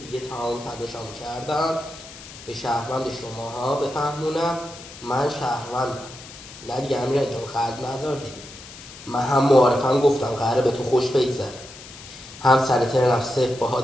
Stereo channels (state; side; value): noise; left; hiss, 16 dB below the sound